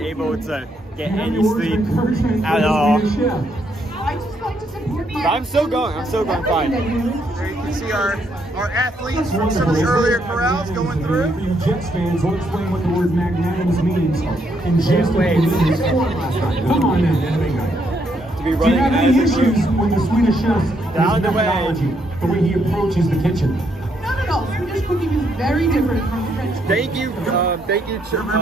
to get any sleep at all. But I'm still going fine. There you can see our athletes from some of the earlier corrals going through. For you Jets fans, we'll explain what the word magnanimous means in just a minute. Come on now, To be running do you have any issues with the Swedish Chef down the way. The way he approaches the kitchen? No. Swedish cooking is very different from French cooking. Thank you,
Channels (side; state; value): both; normal; correlation 0.75